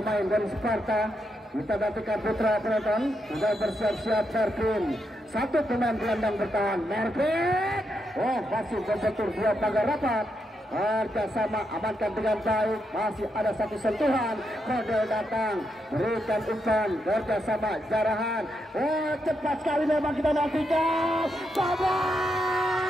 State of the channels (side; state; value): both; normal; correlation 0.82